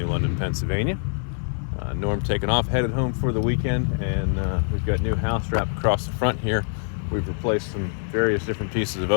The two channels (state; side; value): silent; right; 59 dB below the other